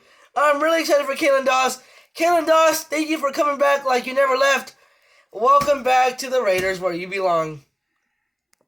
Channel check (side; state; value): both; identical; correlation 1.00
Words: I'm really excited for Keelen Doss. Keelen Doss, thank you for coming back like you never left. Welcome back to the Raiders where you belong.